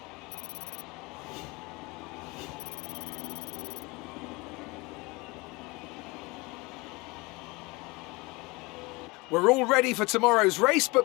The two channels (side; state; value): right; quieter; 24.7 dB